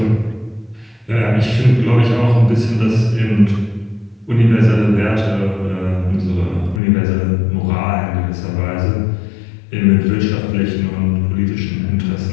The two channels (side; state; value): right; drops out; at 6.8 s